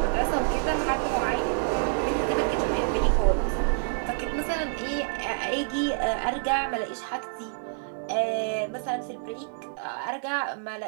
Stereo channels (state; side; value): silent; left; digital silence